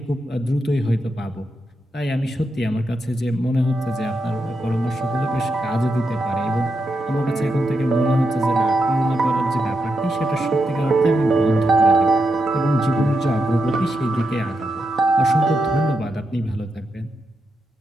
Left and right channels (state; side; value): normal; both; correlation 0.85